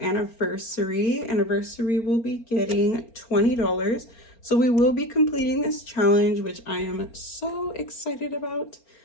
Anniversary will be getting $20. So we will be completing this challenge, which I am so excited about.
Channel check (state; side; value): late; right; 4.3 ms